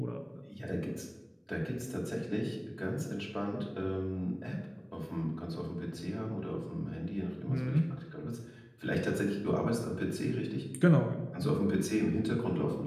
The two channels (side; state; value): both; identical; correlation 1.00